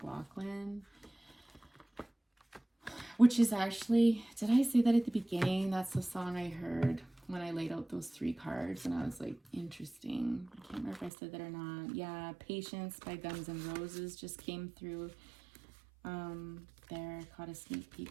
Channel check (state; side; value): drops out; left; at 11.1 s